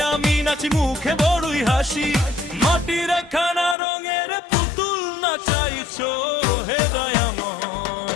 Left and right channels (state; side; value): drops out; right; at 3.8 s